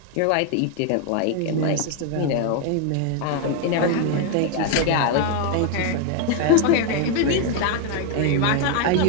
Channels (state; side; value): different; both; correlation 0.01